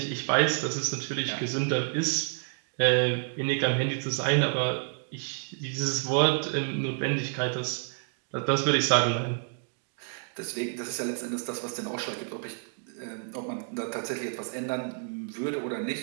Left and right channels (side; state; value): left; silent; 58 dB below the other